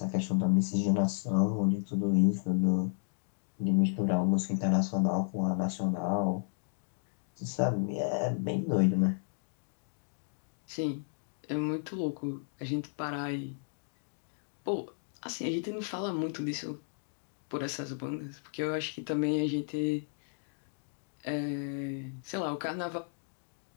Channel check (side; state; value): right; silent; digital silence